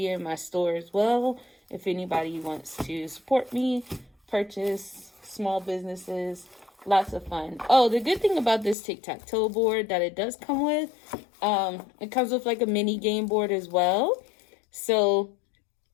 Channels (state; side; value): drops out; right; at 8.8 s